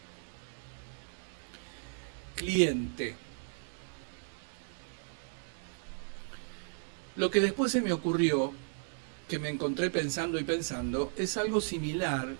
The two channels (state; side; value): silent; left; 54 dB below the other